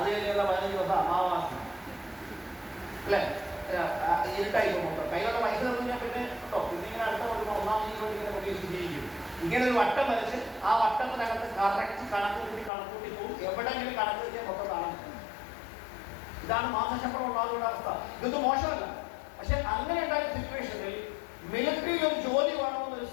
കഴിഞ്ഞുള്ള 15 ദിവസം അമാവാസി, അല്ലേ? ഇരുട്ടായി പോകുമ്പോൾ കയ്യിലുള്ള പൈസ തന്നില്ല പിന്നെ കേട്ടോ, പിന്നെ ഇങ്ങനെ അടുത്ത കൊടുക്കുമ്പോൾ 1-ാം തീയതി ഇങ്ങനെ പ്രതീക്ഷിച്ചിരിക്കും. ഇങ്ങനെ ഒരു വട്ടം വരച്ച് ആ വട്ടത്തിനകത്ത് കറക്റ്റ് കണക്കൂട്ടി പോകും. എവിടെയെങ്കിലും കണക്ക് വെച്ചാൽ മൊത്തം കാണാൻ. ഇതാണ് മാസശമ്പളം ഉണ്ടാകുന്ന അവസ്ഥ. ഇതൊന്നും മോശമല്ല. പക്ഷെ അങ്ങനെ ഉണ്ടായ സിറ്റുവേഷനിൽ മിലിറ്ററിയിൽ ഒരു ജോലി വേണമെന്നൊരു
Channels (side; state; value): right; drops out; at 12.7 s